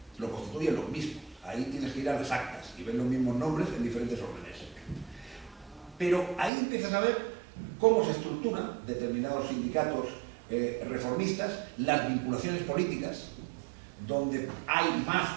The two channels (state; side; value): drops out; left; at 6.5 s